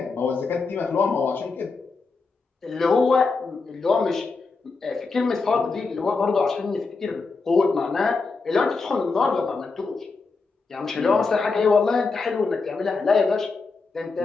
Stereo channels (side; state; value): right; quieter; 4.2 dB